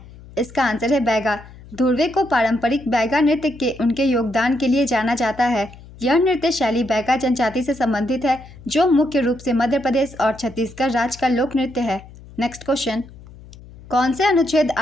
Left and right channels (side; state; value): left; noise; hum, 19 dB below the sound